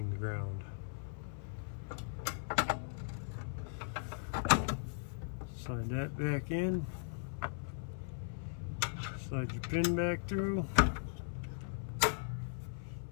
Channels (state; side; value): silent; right; 52 dB below the other